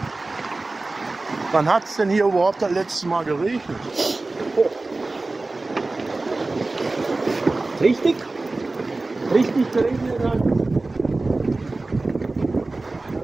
Wann hat es denn hier überhaupt das letzte Mal geregnet? Richtig? Richtig geregnet hat.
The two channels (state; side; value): quieter; left; 3.2 dB